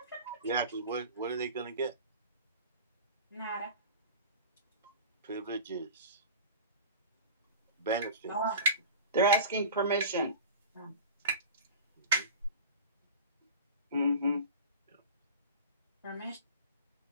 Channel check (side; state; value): both; inverted; correlation -0.34